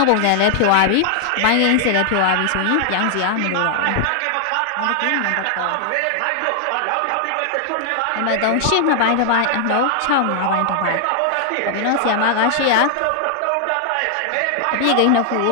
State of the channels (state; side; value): different; both; correlation 0.00